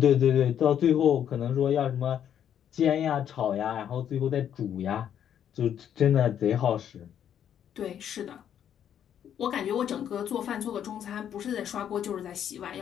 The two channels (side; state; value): right; quieter; 9.5 dB